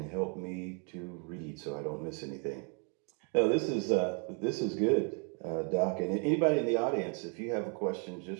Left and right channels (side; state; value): left; quieter; 38.3 dB